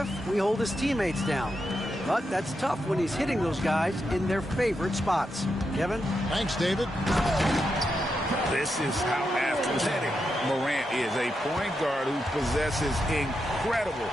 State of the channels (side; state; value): both; normal; correlation 0.85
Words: we hold his teammates down. But that's tough when he's hitting those guys in their favorite spots. Kevin? Thanks, David. This is how athletic Morant is, a point guard who possesses incredible